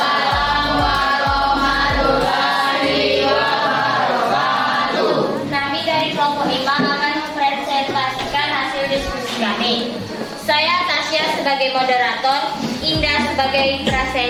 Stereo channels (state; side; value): identical; both; correlation 1.00